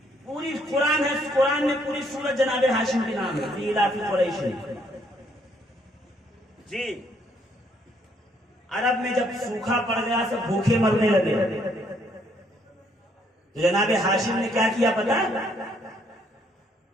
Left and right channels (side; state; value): both; normal; correlation 0.68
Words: پوری قرآن ہے، قرآن میں پوری سورت جناب ہاشم کے نام ہے، ایلاف قریش۔ جی عرب میں جب سوکھا پڑ گیا سب بھوکے مرنے لگے تو جناب ہاشم نے کیا کیا پتا؟